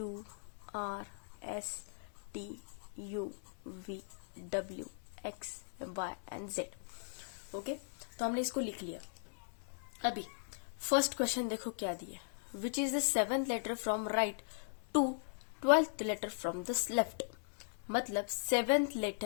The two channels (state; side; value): silent; right; digital silence